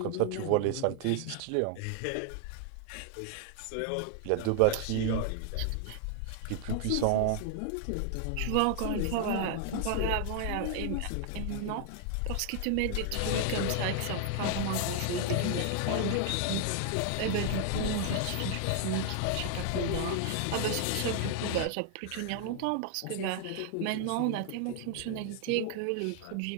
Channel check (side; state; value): both; different; correlation 0.00